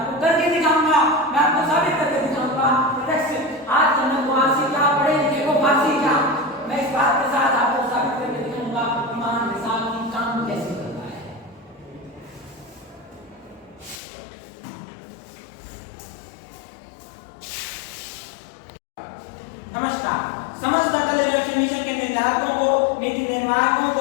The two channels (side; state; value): right; drops out; at 14.0 s